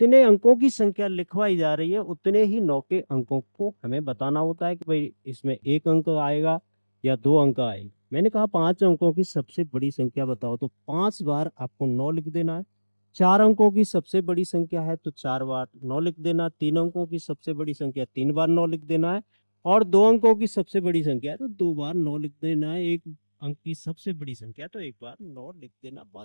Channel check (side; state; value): both; inverted; correlation -1.00